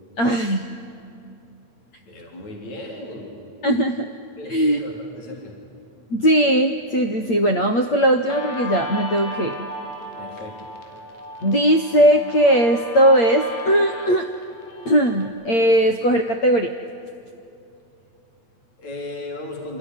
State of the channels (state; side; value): late; right; 8.7 ms